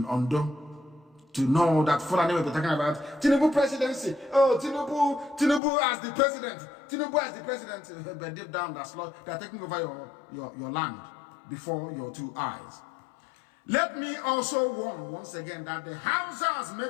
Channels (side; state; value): right; drops out; at 5.6 s